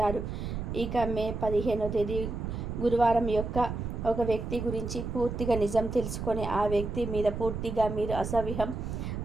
ఇక మే 15వ తేదీ గురువారం యొక్క ఒక వ్యక్తి గురించి పూర్తిగా నిజం తెలుసుకొని ఆ వ్యక్తి మీద పూర్తిగా మీరు అసహ్యం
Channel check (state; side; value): noise; right; rumble, 5 dB below the sound